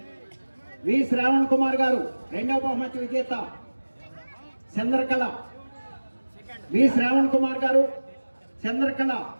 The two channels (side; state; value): both; inverted; correlation -1.00